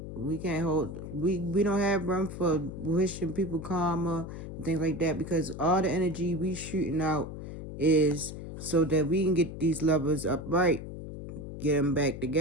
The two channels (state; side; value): noise; left; hum, 9 dB below the sound